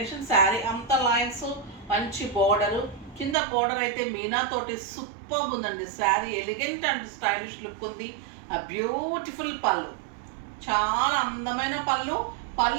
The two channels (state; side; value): drops out; left; at 3.4 s